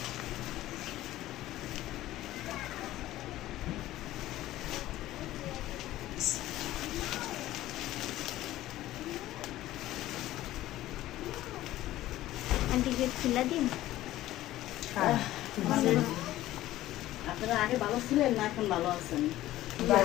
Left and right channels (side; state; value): right; quieter; 15.1 dB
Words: আন্টি গেট খুলে দিন। আপনারা আগে ভালো ছিলেন না এখন ভালো আছেন?